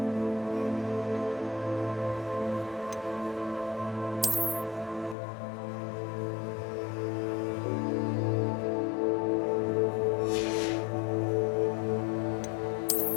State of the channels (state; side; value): drops out; right; at 5.2 s